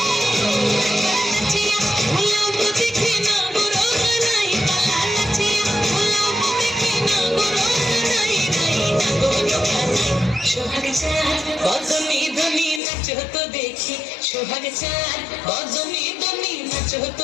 নাচিয়া ভোলাও তো দেখি নাগর কানাই পালা, নাচিয়া ভোলাও তো দেখি নাগর কানাই নাই নাগর কানাই। সোহাগ চাঁদ বদনি ধ্বনি নাচ হতো দেখি, সোহাগ চাঁদ বদনি ধ্বনি নাচ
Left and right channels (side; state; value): right; drops out; at 12.8 s